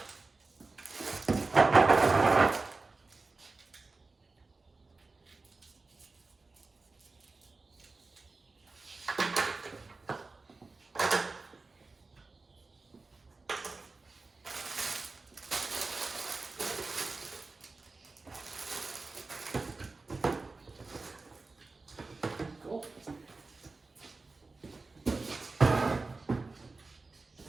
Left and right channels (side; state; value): left; quieter; 3.7 dB